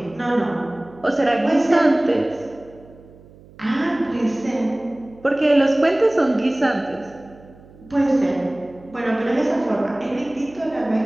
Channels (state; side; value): noise; right; hum, 23 dB below the sound